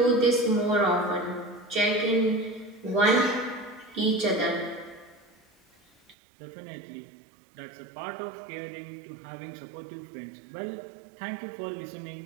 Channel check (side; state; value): left; drops out; at 6.2 s